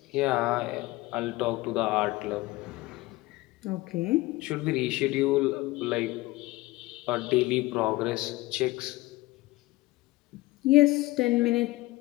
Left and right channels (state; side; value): quieter; right; 20.0 dB